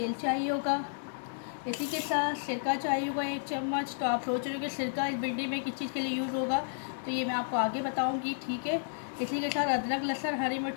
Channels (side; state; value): right; silent; digital silence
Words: चाहिए होगा। इसी के साथ सिरका चाहिए होगा 1 चम्मच। तो आप सोच रहे हो कि सिरका इस भिंडी में किस चीज़ के लिए यूज़ होगा, तो ये मैं आपको आगे बताऊंगी, ठीक है। इसी के साथ अदरक लहसुन हरी